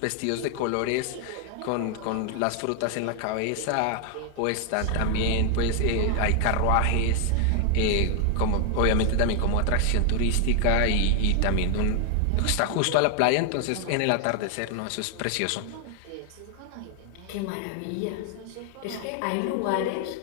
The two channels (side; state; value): both; different; correlation 0.00